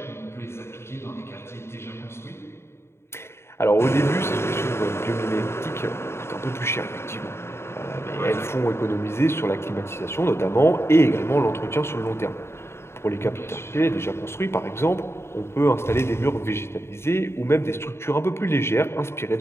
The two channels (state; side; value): late; right; 0.12 ms